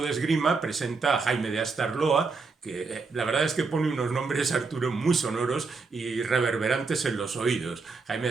de esgrima presenta a Jaime de Astarloa, que la verdad es que pone unos nombres, Arturo, muy sonoros y reverberantes en los oídos. Jaime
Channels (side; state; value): left; quieter; 4.4 dB